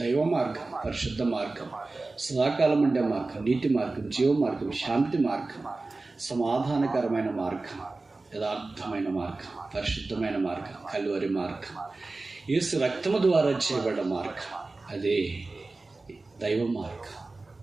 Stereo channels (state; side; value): quieter; left; 3.4 dB